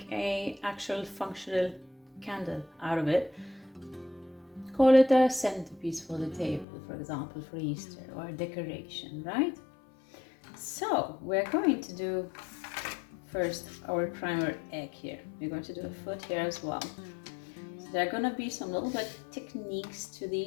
a actual functional candle out of it. Call it a centerpiece for the table, for example, for Easter, or a decoration, right? So we're going to do first our primer egg here. We're going to do a foot here as well. So there are going to be some little bit techniques to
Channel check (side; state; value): right; drops out; at 6.7 s